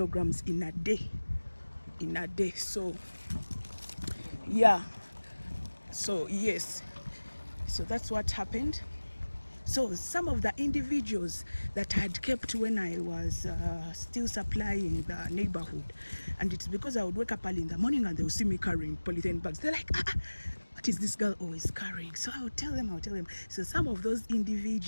in a day. So yeah, so yes, so that's what happened. So some of the individuals that I had kept when I was still supplying the neighborhood, and it's because I would wake up early in the morning and they would see me carrying polythene bags. They're like, what is this girl always carrying? So I would tell them. So some of those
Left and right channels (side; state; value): both; inverted; correlation -1.00